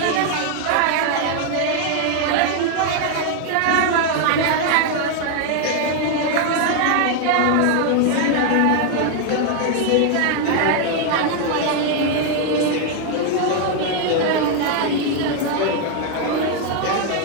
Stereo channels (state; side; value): different; both; correlation 0.00